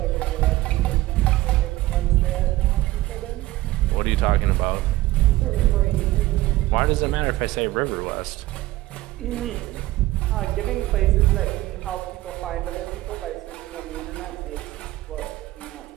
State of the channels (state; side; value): quieter; left; 17.4 dB